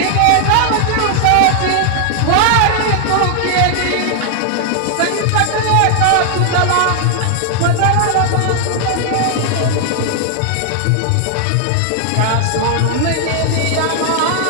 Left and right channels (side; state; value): both; different; correlation 0.00